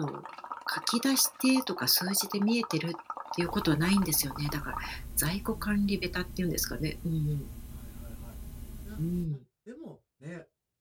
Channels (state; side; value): identical; both; correlation 1.00